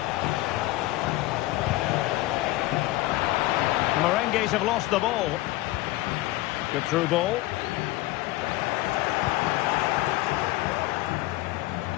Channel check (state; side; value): quieter; right; 18.1 dB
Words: Merengues have lost the ball. Good through ball.